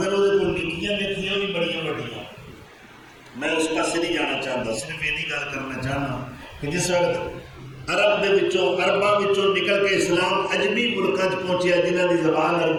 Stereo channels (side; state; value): both; identical; correlation 1.00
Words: وہ نکیاں لکھیاں بھی بڑی بڑیاں. میں اس پاس نہیں جانا چاہتا صرف یہ گل کرنا چاہنا کہ جس وقت عرب دے وچوں عرباں وچوں نکل کے اسلام عجمی ملکاں چ پہنچیا جنہاں دی زبان